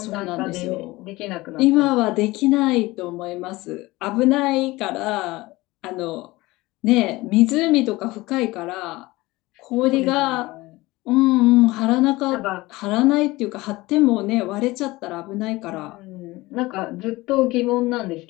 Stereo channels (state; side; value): quieter; right; 20.3 dB